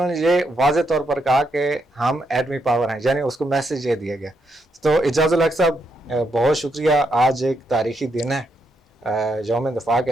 ये वाज़े तौर पर कहा कि हम एटमी पावर हैं, यानी उसको मैसेज ये दिया गया। तो इजाज़ुल हक साहब, बहुत शुक्रिया। आज एक तारीख़ी दिन है, यौम दिफा के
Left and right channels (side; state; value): both; normal; correlation 0.79